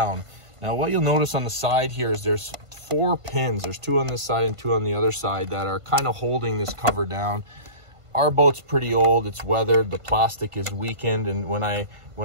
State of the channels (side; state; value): left; late; 1.5 ms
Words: Now what you'll notice on the side here is there's 4 pins. There's 2 on this side and 2 on the other side that are kind of holding this cover down. Our boat's pretty old, it's weathered, the plastic is weakened, and when